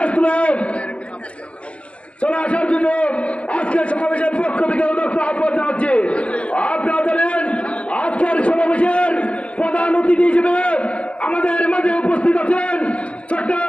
আসলে চলে আসার জন্য আজকের সমাবেশের পক্ষ থেকে আহ্বান জানাচ্ছি। আপনারা জানেন আজকের সমাবেশের প্রধান অতিথি হিসেবে আমাদের মাঝে উপস্থিত আছেন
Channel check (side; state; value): right; late; 0.062 ms